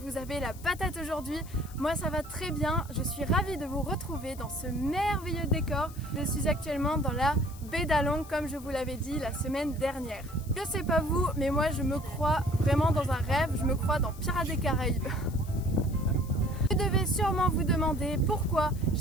avez la patate aujourd'hui. Moi ça va très bien, je suis ravie de vous retrouver dans ce merveilleux décor. Je suis actuellement dans la baie d'Allongues comme je vous l'avais dit la semaine dernière. Je sais pas vous, mais moi je me crois vraiment dans un rêve, je me crois dans Pirates des Caraïbes. Vous devez sûrement vous demander pourquoi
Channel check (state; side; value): noise; left; hiss, 20 dB below the sound